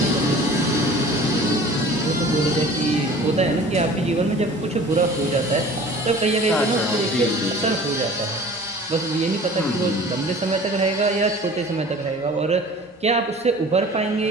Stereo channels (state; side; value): normal; both; correlation 0.44